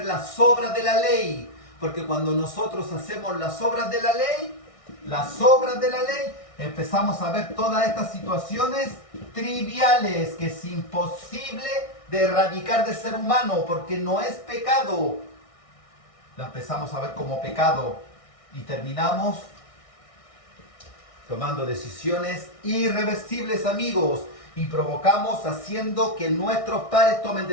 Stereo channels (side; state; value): right; late; 1.6 ms